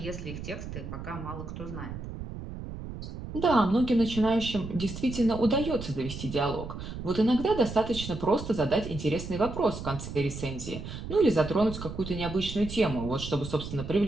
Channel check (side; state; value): right; noise; rumble, 9 dB below the sound